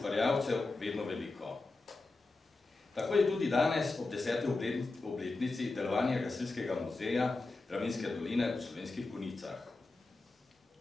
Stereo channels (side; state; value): right; quieter; 3.4 dB